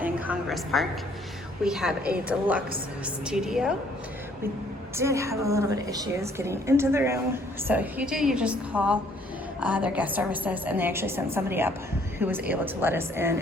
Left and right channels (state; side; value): normal; both; correlation 0.62